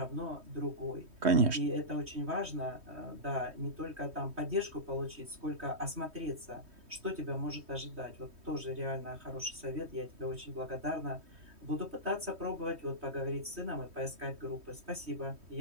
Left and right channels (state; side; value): late; left; 3.2 ms